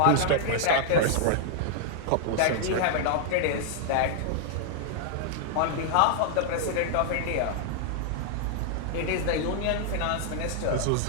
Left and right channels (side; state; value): both; different; correlation -0.01